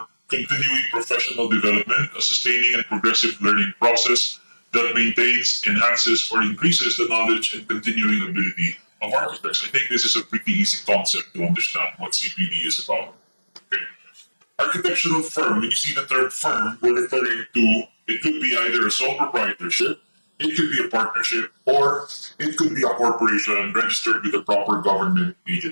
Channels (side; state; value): both; inverted; correlation -1.00